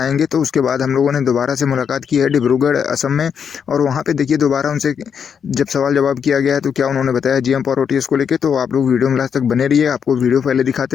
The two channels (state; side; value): quieter; right; 7.3 dB